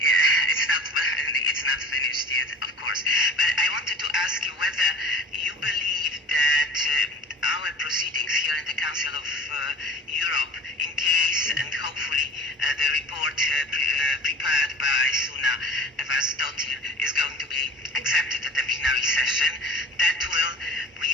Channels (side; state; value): both; normal; correlation 0.43